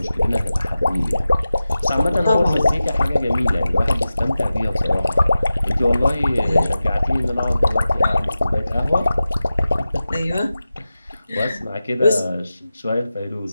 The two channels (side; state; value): both; inverted; correlation -0.94